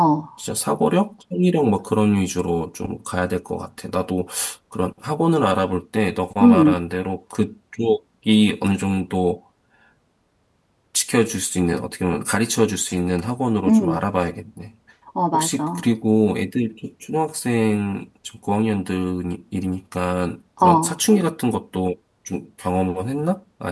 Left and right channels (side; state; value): both; identical; correlation 1.00